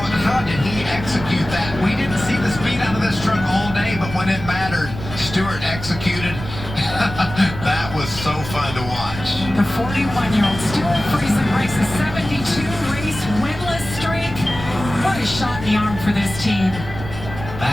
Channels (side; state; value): right; noise; rumble, 10 dB below the sound